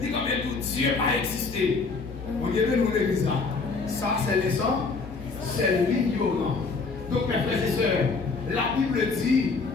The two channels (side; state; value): right; quieter; 4.3 dB